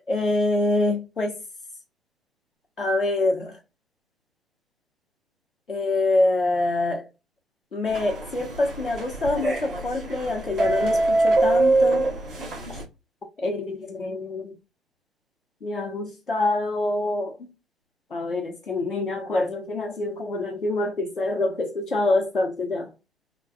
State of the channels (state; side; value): normal; both; correlation 0.81